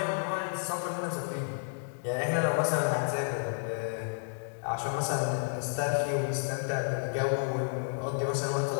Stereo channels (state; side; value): silent; right; digital silence